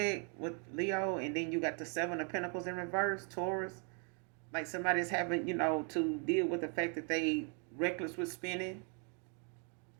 with Leo, and then you got the Seven of Pentacles in reverse, Taurus. Like somebody's having, to deal with the fact that they reckless with spending.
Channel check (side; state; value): left; quieter; 36.7 dB